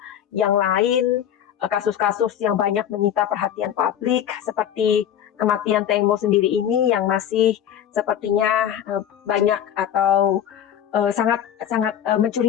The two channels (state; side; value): quieter; right; 9.9 dB